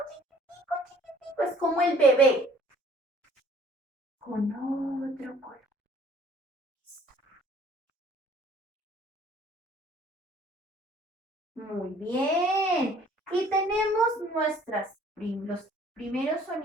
chiquitico, chiquitico. Es como el bebé. Con otro color. Muy bien. Y tenemos los primeros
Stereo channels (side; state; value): both; normal; correlation 0.56